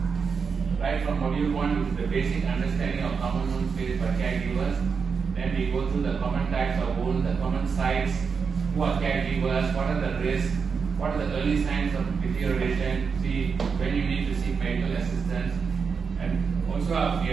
Right from module 1, which is the basic understanding of common wounds faced by caregivers. Then we go through the common types of wounds, the common sites, who are caregivers, what are the risks, what are the early signs of deterioration, see when you need to seek medical assistance. And also we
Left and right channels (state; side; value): quieter; left; 5.7 dB